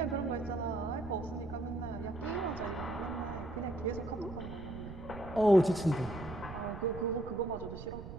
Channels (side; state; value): right; noise; rumble, 11 dB below the sound